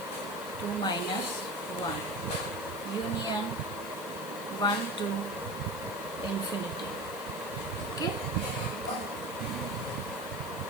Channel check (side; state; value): left; noise; hiss, 14 dB below the sound